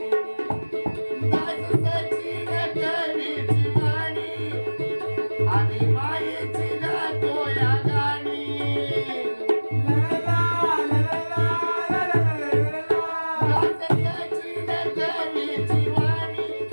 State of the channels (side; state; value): both; inverted; correlation -1.00